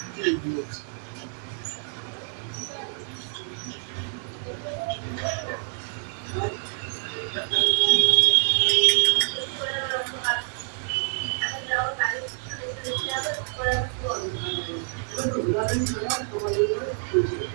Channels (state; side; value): silent; left; 57 dB below the other